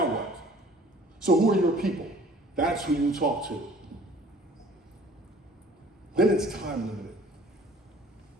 what? So who are your people? That's who you talk to. Then it's time limited.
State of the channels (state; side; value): normal; both; correlation 0.52